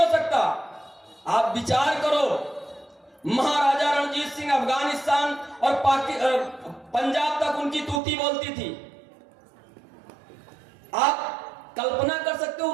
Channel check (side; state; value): left; drops out; at 8.0 s